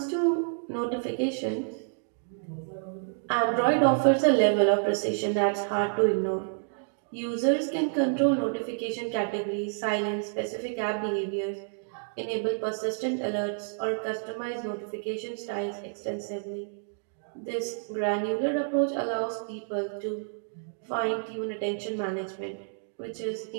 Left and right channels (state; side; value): silent; left; digital silence